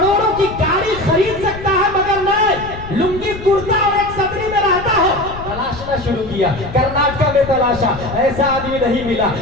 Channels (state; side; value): noise; left; rumble, 12 dB below the sound